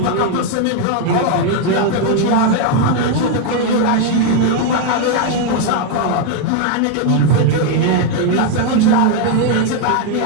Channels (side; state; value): both; different; correlation 0.01